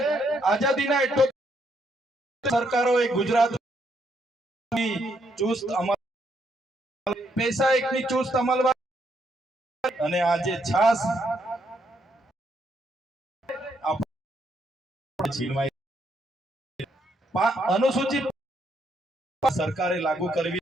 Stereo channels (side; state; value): both; normal; correlation 0.74